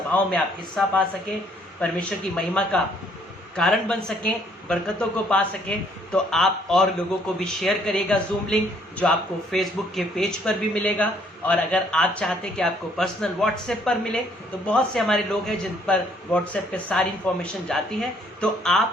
में आप हिस्सा पा सकें, परमेश्वर की महिमा का कारण बन सकें, बरकतों को पा सकें, तो आप और लोगों को भी शेयर करिएगा जूम लिंक, जो आपको फेसबुक के पेज पर भी मिलेगा। और अगर आप चाहते हैं कि आपको पर्सनल व्हाट्सएप पर मिले, तो बहुत से हमारे लोग हैं जिन पर व्हाट्सएप पे सारी इंफॉर्मेशन जाती है, तो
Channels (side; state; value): both; normal; correlation 0.64